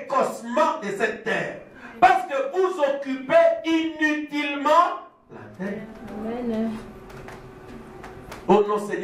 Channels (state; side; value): identical; both; correlation 1.00